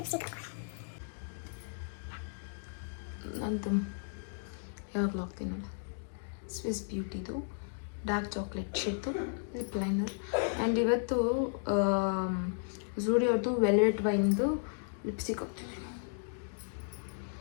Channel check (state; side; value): silent; right; digital silence